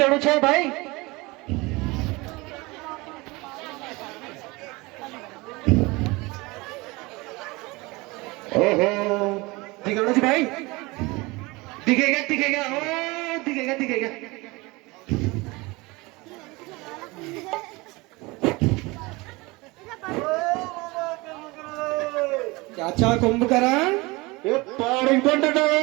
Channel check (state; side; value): quieter; left; 23.7 dB